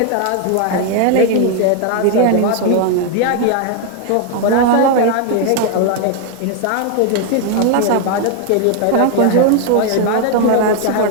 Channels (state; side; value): different; both; correlation 0.00